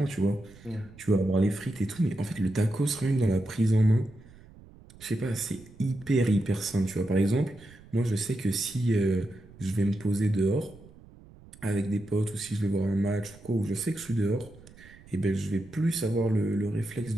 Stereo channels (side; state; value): right; noise; rumble, 22 dB below the sound